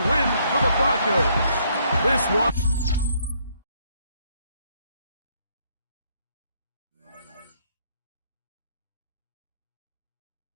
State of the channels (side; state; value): both; inverted; correlation -0.70